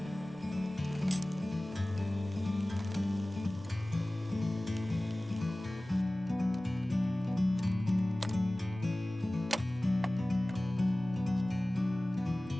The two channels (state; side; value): normal; both; correlation 0.98